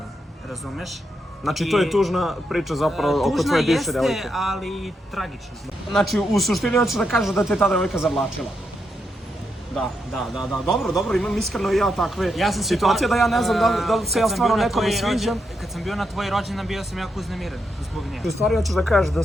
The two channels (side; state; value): both; normal; correlation 0.82